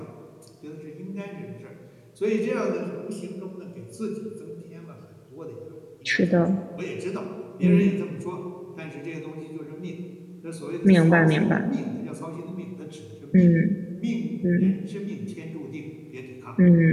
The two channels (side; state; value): both; identical; correlation 1.00